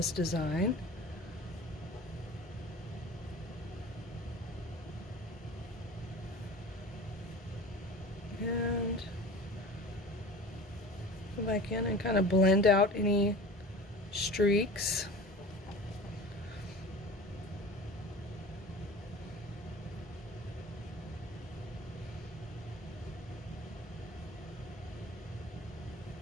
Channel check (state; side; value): normal; both; correlation 0.38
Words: design. And go back in and kind of blend out any streaks.